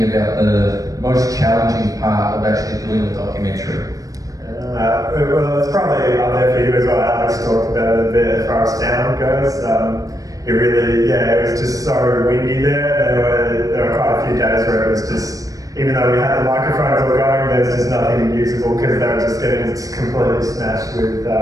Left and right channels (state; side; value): late; left; 0.17 ms